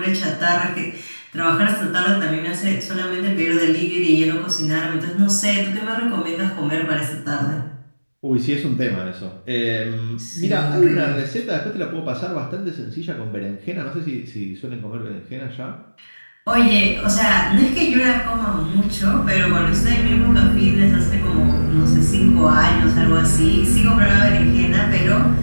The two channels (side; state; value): both; inverted; correlation -1.00